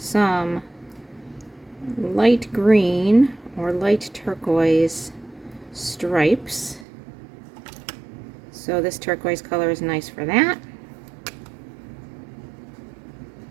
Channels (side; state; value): left; drops out; at 6.9 s